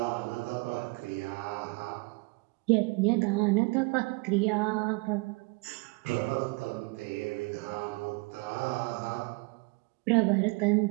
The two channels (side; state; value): left; quieter; 27.1 dB